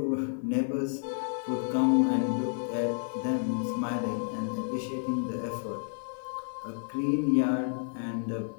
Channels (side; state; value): right; silent; 57 dB below the other